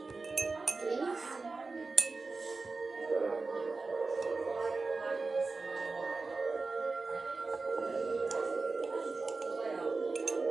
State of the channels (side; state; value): left; quieter; 3.9 dB